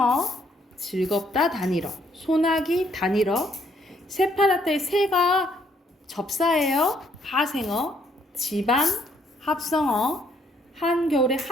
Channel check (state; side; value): normal; both; correlation 0.69